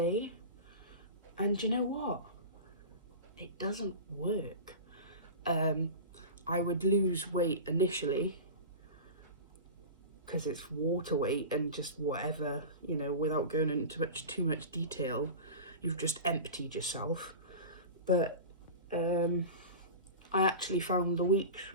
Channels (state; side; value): inverted; both; correlation -0.31